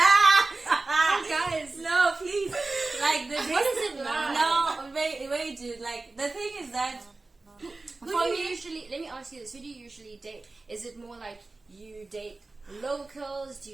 Guys, No, please. Like what is it like? No, wait, dude. Like the thing is that Who do you usually, let me ask you this, who do you usually date? Is it more like you date locals? Do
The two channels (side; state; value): left; quieter; 3.4 dB